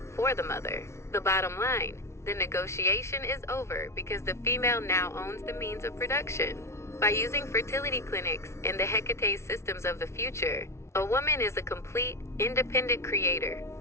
for the mother. The bottom line. The negotiation is over because the female now owns the means of production. By using fertility clinics and the Hecate systems of the future, a woman is a complete, independent creator.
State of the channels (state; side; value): late; right; 0.13 ms